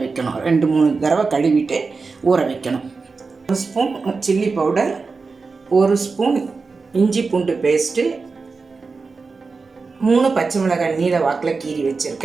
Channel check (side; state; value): left; quieter; 4.4 dB